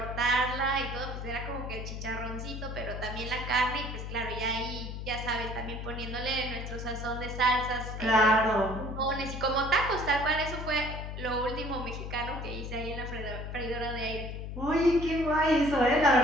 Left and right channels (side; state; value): left; noise; hum, 7 dB below the sound